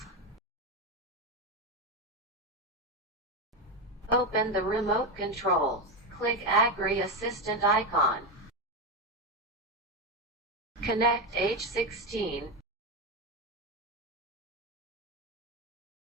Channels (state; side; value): normal; both; correlation 0.13